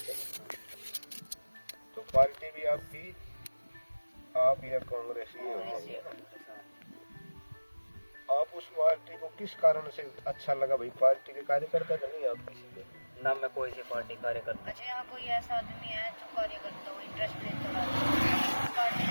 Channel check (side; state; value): both; inverted; correlation -1.00